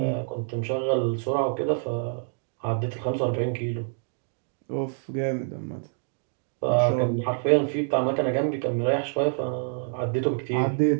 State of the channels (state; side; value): silent; left; 60 dB below the other